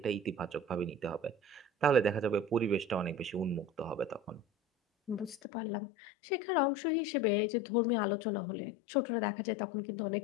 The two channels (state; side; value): drops out; right; at 5.4 s